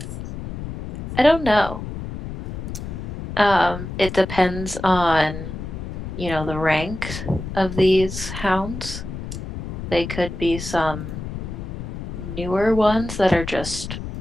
I don't know. It depends on, the rank of these hounds. They could be some newer ones that are just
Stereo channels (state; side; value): noise; left; rumble, 8 dB below the sound